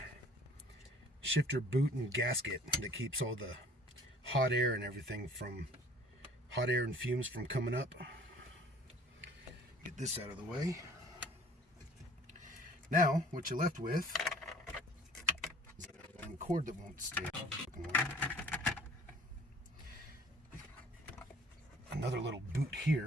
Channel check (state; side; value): normal; both; correlation 0.53